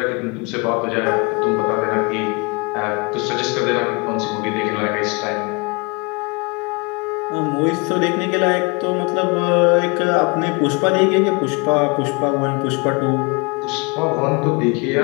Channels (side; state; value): right; quieter; 29.9 dB